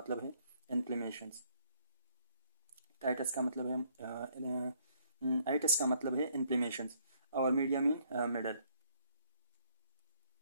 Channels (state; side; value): inverted; both; correlation -0.67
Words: है इन्फ्लेमेशंस। टाइटस का मतलब है आइटस का मतलब है इन्फ्लेमेशंस, और मीडिया मीन मिडल।